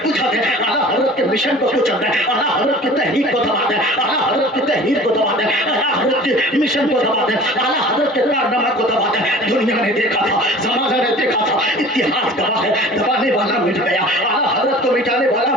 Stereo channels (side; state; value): both; normal; correlation 0.44